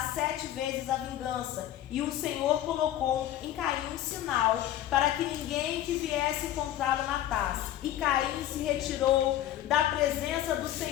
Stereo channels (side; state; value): right; quieter; 12.7 dB